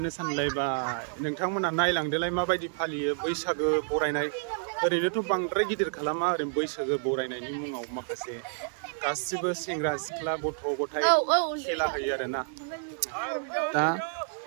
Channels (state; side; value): silent; left; digital silence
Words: सानलायबाय नोंथांमोना नायलांदोलाय माबायदि फालियो बैसागो बरायनाय ओरैनोथ' बांद्राय गिदिर खालामा ओरैनो बैसागो बरायनायनि मुङाव माखासे गासिबो सेंग्रा सिख्ला गथ' गथाय खेला होयो आरोना दा